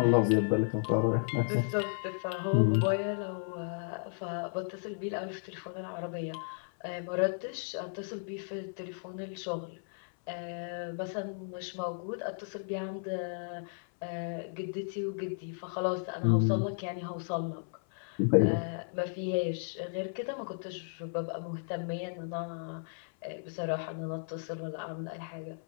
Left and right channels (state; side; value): silent; right; 55 dB below the other